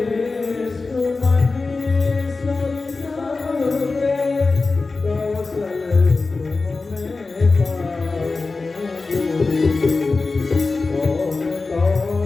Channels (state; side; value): quieter; right; 3.8 dB